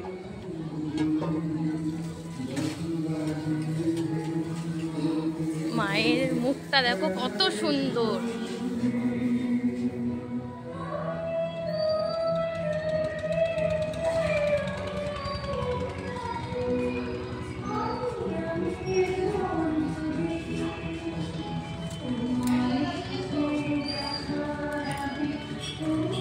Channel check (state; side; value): identical; both; correlation 1.00